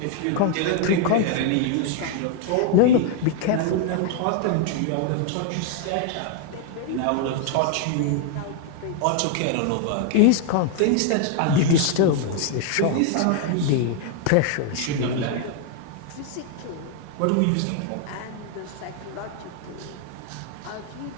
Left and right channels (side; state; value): both; different; correlation 0.00